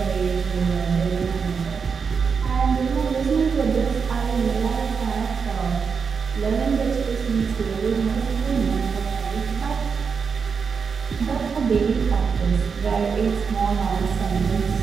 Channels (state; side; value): quieter; left; 5.8 dB